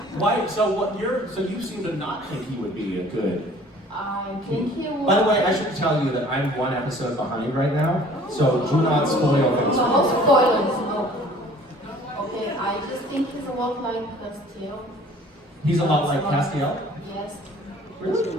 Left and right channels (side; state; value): both; normal; correlation 0.51